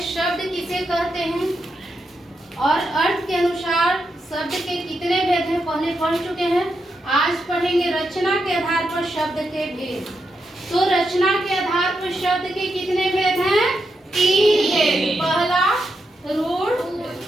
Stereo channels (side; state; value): both; normal; correlation 0.84